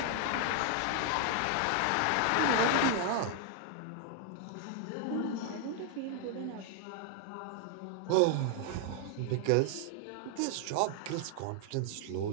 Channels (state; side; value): different; both; correlation 0.00